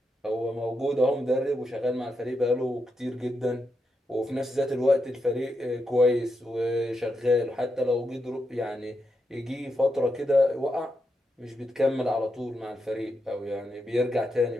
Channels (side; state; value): both; normal; correlation 0.84